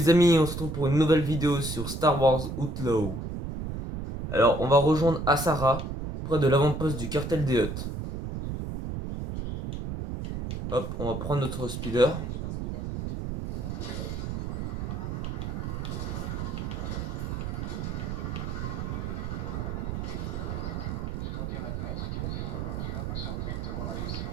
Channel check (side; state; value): right; noise; rumble, 4 dB below the sound